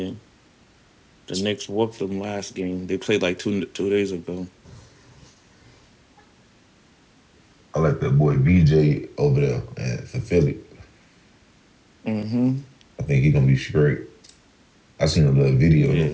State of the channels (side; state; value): both; identical; correlation 1.00